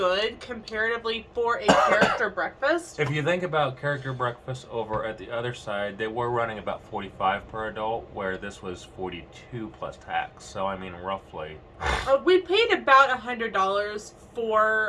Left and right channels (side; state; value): both; identical; correlation 1.00